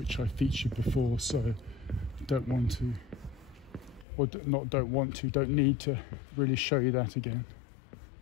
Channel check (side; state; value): right; drops out; at 4.0 s